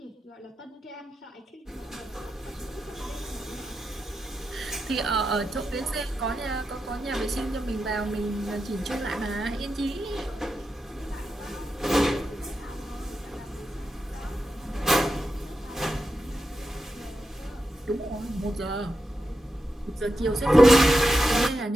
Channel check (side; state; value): both; normal; correlation 0.87